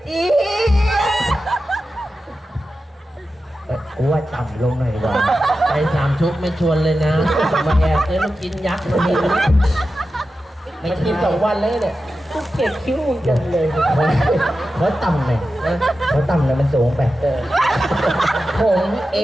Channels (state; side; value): normal; both; correlation 0.92